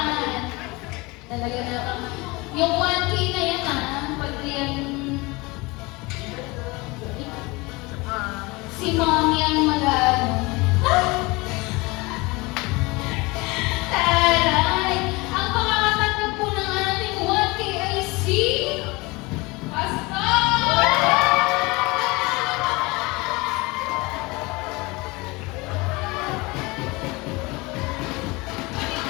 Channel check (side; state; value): right; quieter; 24.3 dB